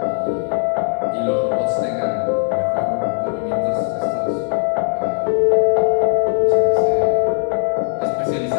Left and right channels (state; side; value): silent; right; digital silence